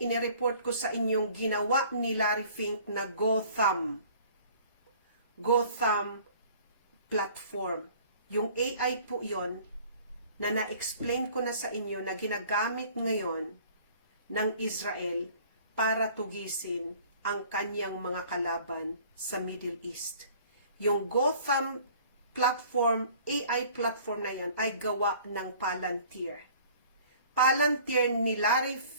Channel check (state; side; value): inverted; both; correlation -0.51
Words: inireport ko sa inyong ginawa ni Larry Fink na Gotham platform. Yung AI po yon na na-explain ko na sa inyo na ginagamit ngayon ng Israel para tugisin ang kanyang mga kalaban sa Middle East. Yung Gotham platform, AI platform na yan ay gawa ng Palantir. Palantir